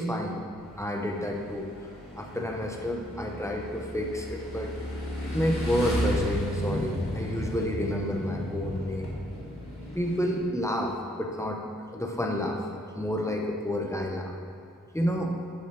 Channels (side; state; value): both; normal; correlation 0.71